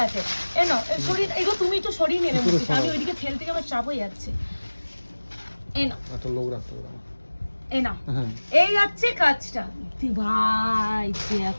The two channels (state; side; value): inverted; both; correlation -1.00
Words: আছে, এই নাও সরি, এগো তুমি একটু সরিয়ে নেবে, আমি ওইদিকে ঠেল থেকে আমার চাপ হয়ে যাচ্ছে। এই নাও একটা লোক রাখতে হবে, এই নাও, এই যাচ্ছে কাজটা ভাই,